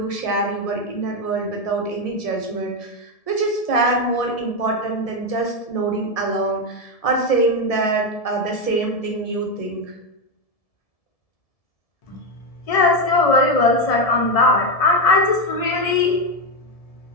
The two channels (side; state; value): right; late; 1.7 ms